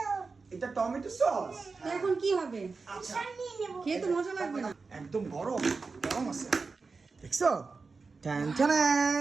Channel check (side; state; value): left; quieter; 4.4 dB